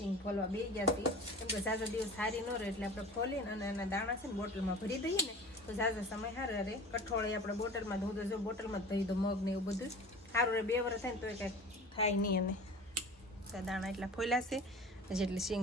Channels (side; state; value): both; normal; correlation 0.39